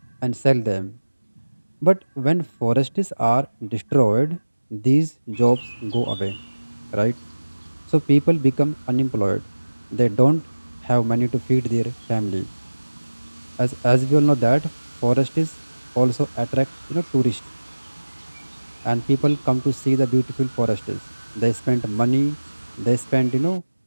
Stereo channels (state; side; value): inverted; both; correlation -1.00